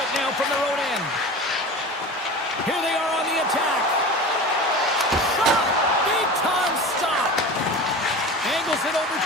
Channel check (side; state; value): both; normal; correlation 0.33